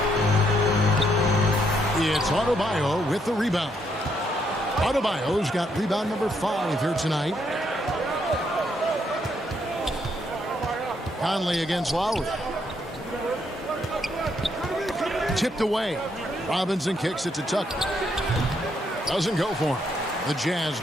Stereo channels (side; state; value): both; normal; correlation 0.74